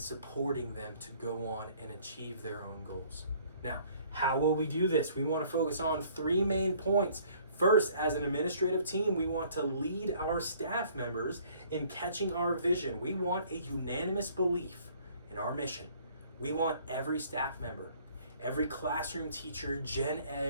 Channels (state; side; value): inverted; both; correlation -0.58